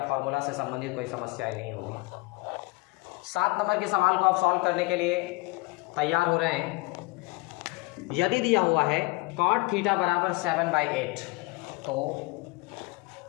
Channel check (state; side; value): quieter; right; 24.3 dB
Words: फार्मूला से संबंधित कोई समस्याएं नहीं होगी। 7 नंबर के सवाल को आप सॉल्व करने के लिए तैयार हो रहे हैं। यदि दिया हुआ है cot थीटा बराबर 7/8, तो